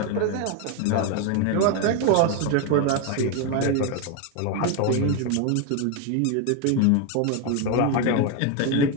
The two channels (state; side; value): different; both; correlation 0.02